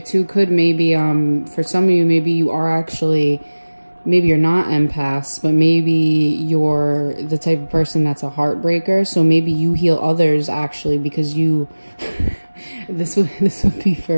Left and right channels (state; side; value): inverted; both; correlation -1.00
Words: too could maybe for some of you, maybe you are actually, maybe you're not empaths, but maybe you're the type of person that's a heartbreaker. So maybe you heal others actually because you this would be